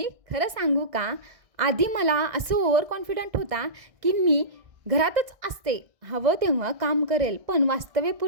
खरं सांगू का, आधी मला असं ओव्हर कॉन्फिडंट होता की मी घरातच असते, हवं तेव्हा काम करेल. पण वास्तव्य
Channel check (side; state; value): left; late; 1.6 ms